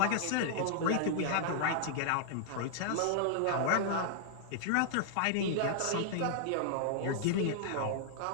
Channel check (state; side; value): different; both; correlation -0.01